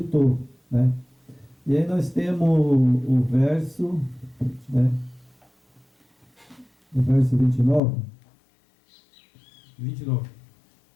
né? E aí nós temos o verso, né? O verso 29. 29.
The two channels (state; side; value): drops out; right; at 7.8 s